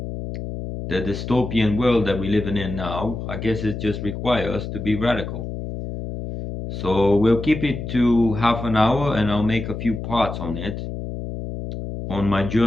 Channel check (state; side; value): noise; left; hum, 7 dB below the sound